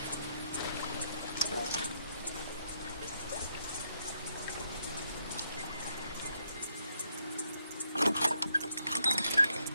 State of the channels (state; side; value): inverted; both; correlation -0.76